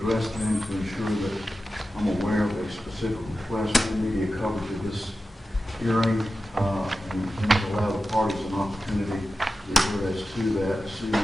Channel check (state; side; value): normal; both; correlation 0.93